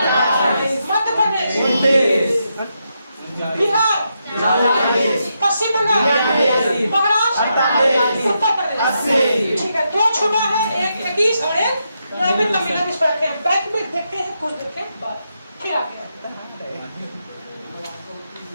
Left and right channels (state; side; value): inverted; both; correlation -0.83